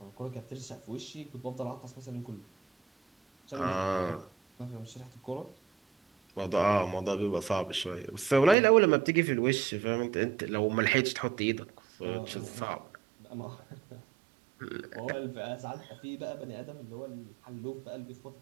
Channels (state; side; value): drops out; left; at 8.6 s